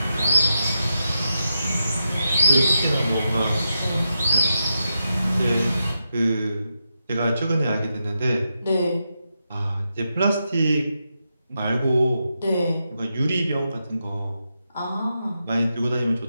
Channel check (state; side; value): inverted; both; correlation -0.87